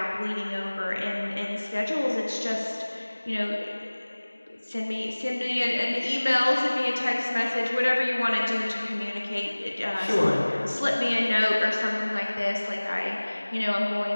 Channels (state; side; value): inverted; both; correlation -1.00